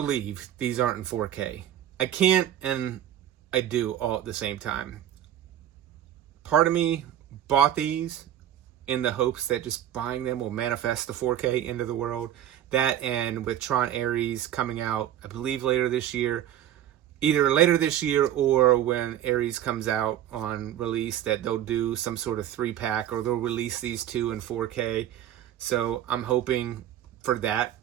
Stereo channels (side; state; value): left; quieter; 11.2 dB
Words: these aren't in 4K. I can't, and I do all at the same time. Part of me bought these in the hopes that just buying them will manifest the 4K into the world. That, and with Tron Ares coming out, I believe later this year, either later this year or when Ares comes out on release, that they'll do some sort of 3-pack or they'll release these two in 4K. So I'm hoping for that.